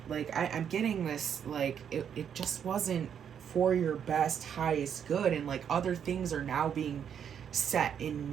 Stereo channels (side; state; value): left; quieter; 8.3 dB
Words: Like I'm getting this, like it just wasn't for your best, highest good, and like other things are now being set in